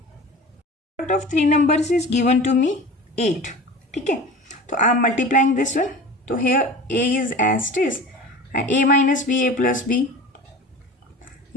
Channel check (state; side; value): normal; both; correlation 0.37